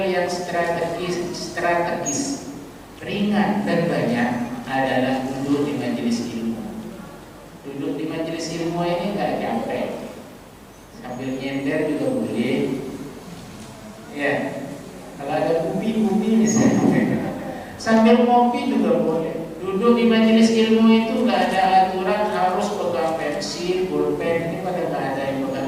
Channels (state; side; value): identical; both; correlation 1.00